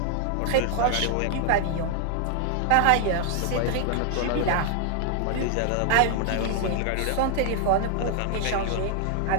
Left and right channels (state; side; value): different; both; correlation 0.00